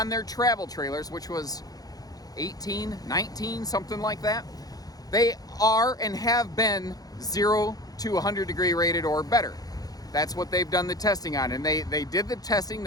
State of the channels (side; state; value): right; late; 0.18 ms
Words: their travel trailers, which was 18, 19, something like that, they are and have been 0 to 100 degree rated or better. That's what they've done the testing on, and they did the testing,